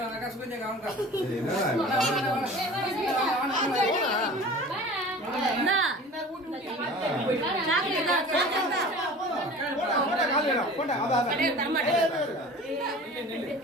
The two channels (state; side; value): normal; both; correlation 0.41